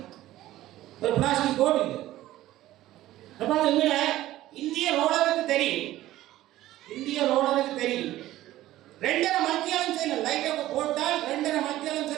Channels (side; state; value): left; quieter; 15.1 dB